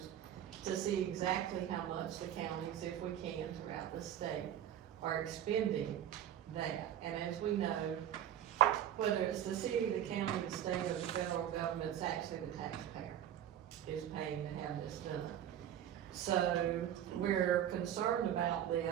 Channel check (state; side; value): quieter; left; 10.7 dB